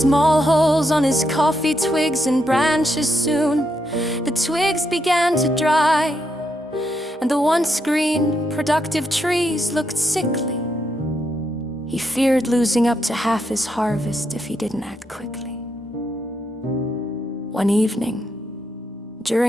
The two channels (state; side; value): normal; both; correlation 0.80